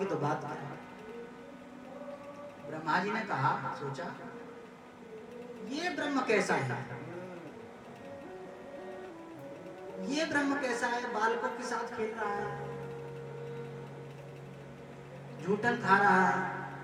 तो बात क्या है। ब्रह्मा जी ने कहा, सोचा ये ब्रह्म कैसा है, ये ब्रह्म कैसा है, बालकों के साथ खेल रहा है, झूठन खा रहा है।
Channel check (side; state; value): both; identical; correlation 1.00